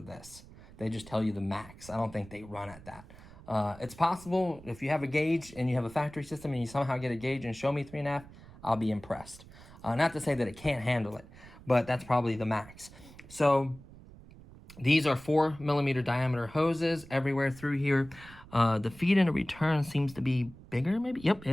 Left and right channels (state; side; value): noise; right; rumble, 20 dB below the sound